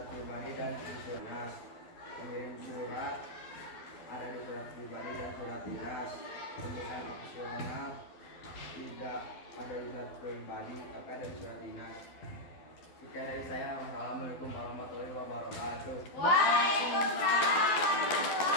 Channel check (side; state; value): right; late; 12 ms